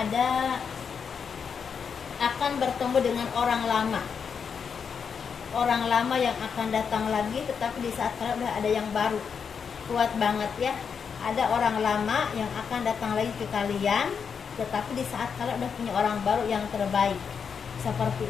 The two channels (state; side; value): quieter; right; 6.5 dB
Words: akan bertemu dengan orang lama yang akan datang lagi, tetapi di saat kalian udah ada yang baru. Kuat banget ya, ada orang lama yang akan datang lagi ke kalian, tetapi di saat kalian udah punya orang baru yang terbaik